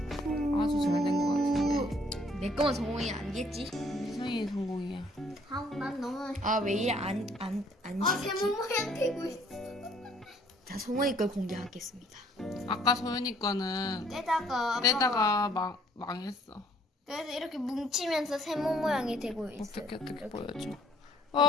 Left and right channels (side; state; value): both; normal; correlation 0.62